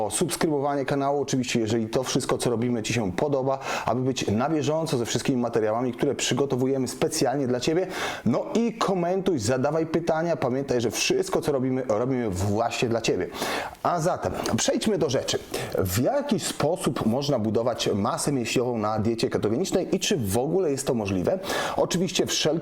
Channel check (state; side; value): identical; both; correlation 1.00